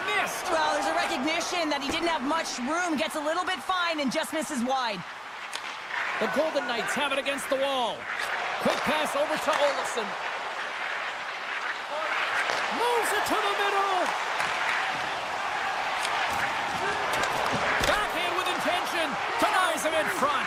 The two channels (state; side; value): identical; both; correlation 1.00